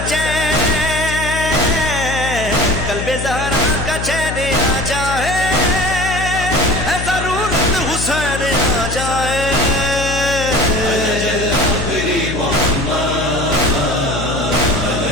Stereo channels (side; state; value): left; noise; hum, 5 dB below the sound